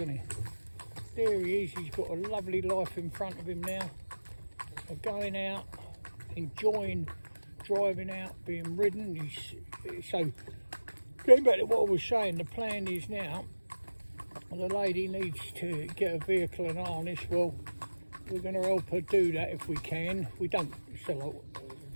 he? there he is. He's got a lovely life in front of him now. Of going out, enjoying driving out, being ridden. So going back to what I was saying, the plan is now, the lady needs to get a vehicle and harness. Well, we're going to help her do that if we can. We don't sell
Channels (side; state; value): both; inverted; correlation -1.00